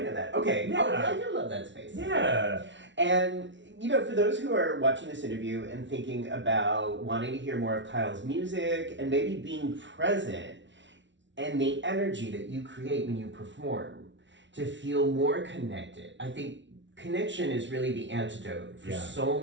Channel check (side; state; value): left; late; 0.54 ms